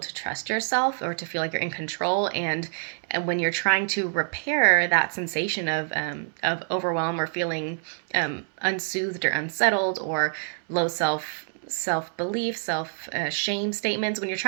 to trust yourself or to feel like you're in control. And when you're trying to repair that sensation of overwhelm or feeling unsoothed or unsettled or low self-belief, shame statements, when you're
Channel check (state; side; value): silent; left; digital silence